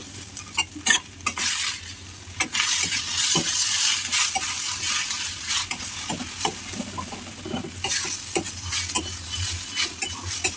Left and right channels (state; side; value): identical; both; correlation 1.00